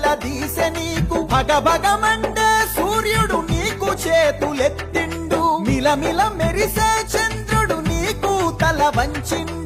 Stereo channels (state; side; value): identical; both; correlation 1.00